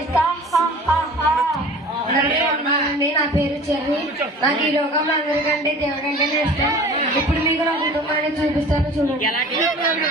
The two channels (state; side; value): normal; both; correlation 0.43